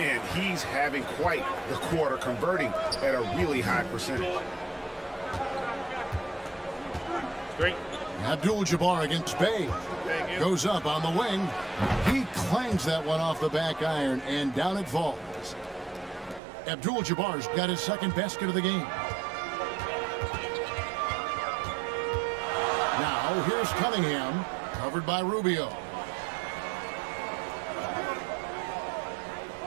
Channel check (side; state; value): left; drops out; at 16.4 s